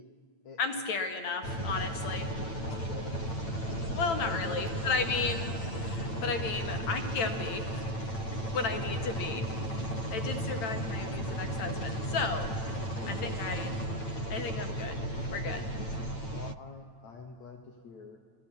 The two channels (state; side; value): late; right; 8.9 ms